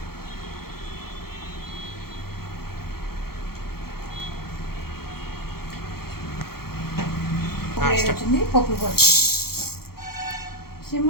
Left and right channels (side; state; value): right; late; 0.94 ms